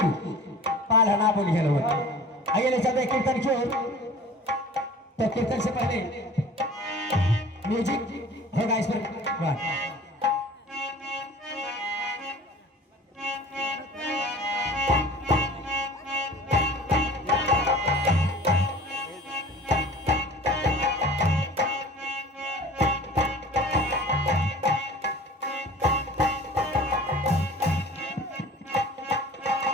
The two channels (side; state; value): both; normal; correlation 0.43